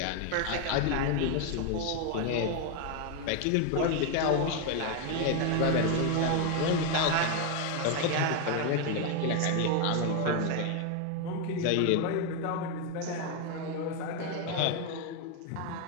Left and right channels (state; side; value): different; both; correlation 0.01